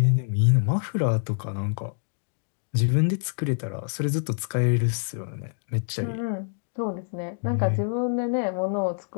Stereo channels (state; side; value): silent; right; digital silence